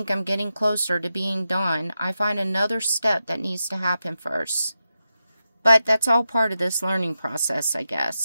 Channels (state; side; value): inverted; both; correlation -0.90